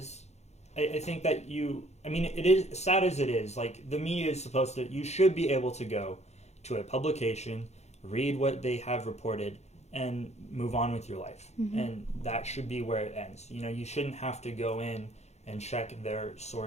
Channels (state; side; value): late; right; 0.32 ms